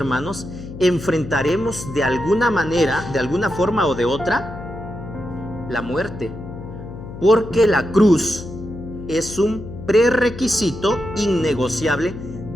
enfrentaremos de alguna manera, de alguna forma o de otra, la muerte. Porque la cruz es un prerequisito innegociable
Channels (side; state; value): left; noise; hum, 12 dB below the sound